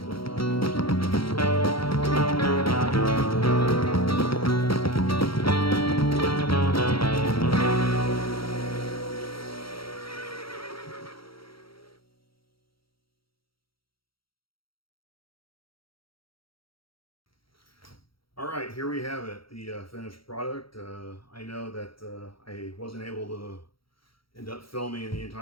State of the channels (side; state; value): right; late; 0.75 ms